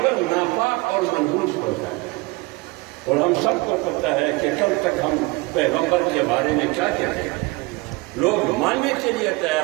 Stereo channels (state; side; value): quieter; left; 24.1 dB